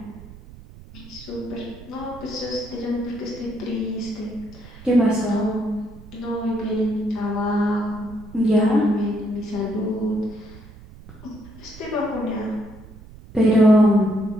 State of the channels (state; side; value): noise; right; rumble, 18 dB below the sound